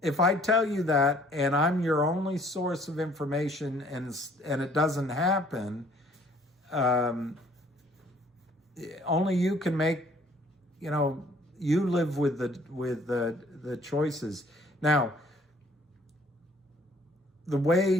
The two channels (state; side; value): normal; both; correlation 0.58